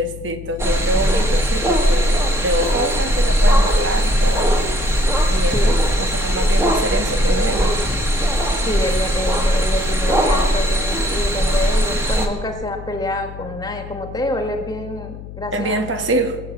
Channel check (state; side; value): noise; left; hum, 13 dB below the sound